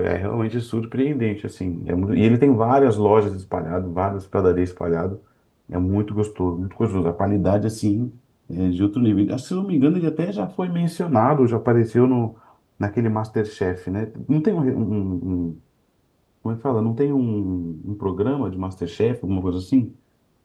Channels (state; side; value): identical; both; correlation 1.00